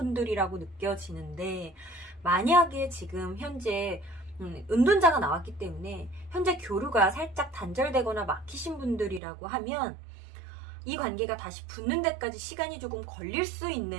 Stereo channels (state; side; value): drops out; left; at 9.2 s